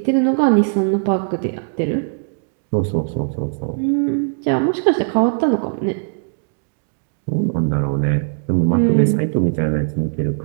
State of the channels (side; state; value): left; silent; digital silence